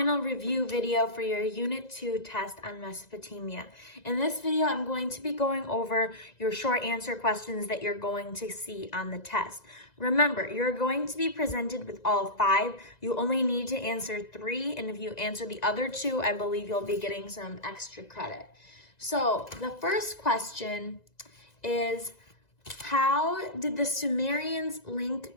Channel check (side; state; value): right; late; 1.9 ms